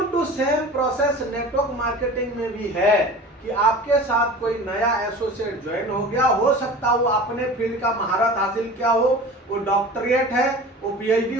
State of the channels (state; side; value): normal; both; correlation 0.37